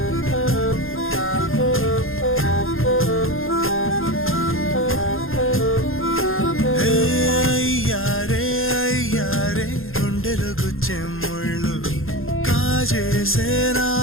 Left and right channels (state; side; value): late; right; 0.60 ms